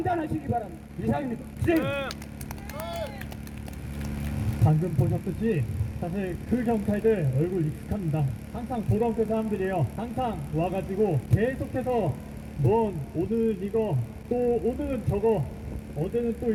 바랍니다. 이상입니다. 방금 보셨듯이 사실 그 경찰들 얼굴 익숙합니다. 항상 보던 그 사람들이에요. 항상 와가지고 계속해서 넌 오늘 이거 또 오늘은 저거 어제는 또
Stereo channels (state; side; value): identical; both; correlation 1.00